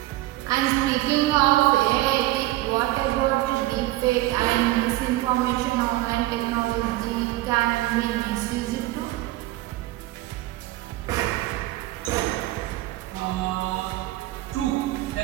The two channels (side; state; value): left; quieter; 17.3 dB